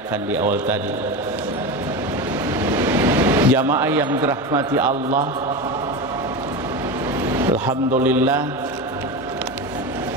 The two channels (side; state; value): both; normal; correlation 0.22